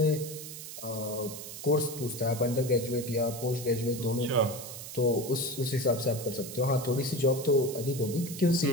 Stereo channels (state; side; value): noise; right; hiss, 11 dB below the sound